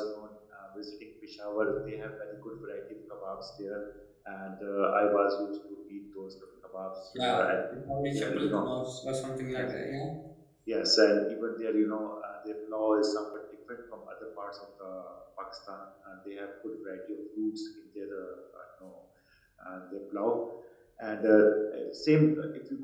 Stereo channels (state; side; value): identical; both; correlation 1.00